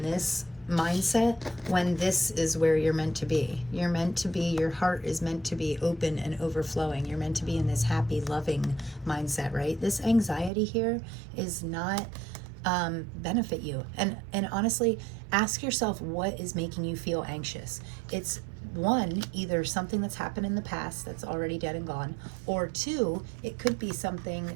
this mindset when this is where you're meant to be. You're meant to be, your heart is meant to be open and overflowing. You're meant to be in this happy, loving mindset, right? This anxiety here is not benefit you. And honestly, ask yourself, what is making you feel anxious? It's one, either something that's happened in the past that's already dead and gone, or 2, it could be something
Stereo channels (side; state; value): left; drops out; at 10.5 s